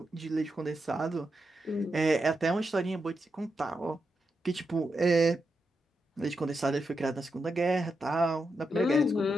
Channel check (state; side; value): normal; both; correlation 0.86